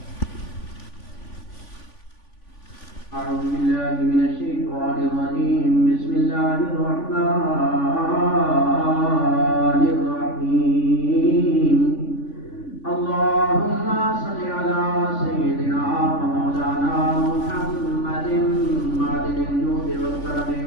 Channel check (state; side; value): late; right; 3.5 ms